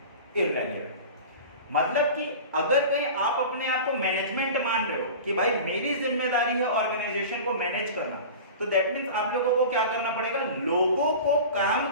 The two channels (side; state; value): both; inverted; correlation -0.35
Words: irrelevant. मतलब कि अगर कहीं आप अपने आप को मैनेजमेंट मान रहे हो कि भाई मेरी जिम्मेदारी है ऑर्गेनाइजेशन को मैनेज करना, तो दैट मींस आप लोगों को क्या करना पड़ेगा? लोगों को काम